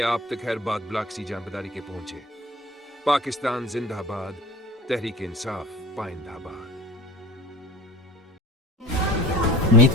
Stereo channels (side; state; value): both; normal; correlation 0.40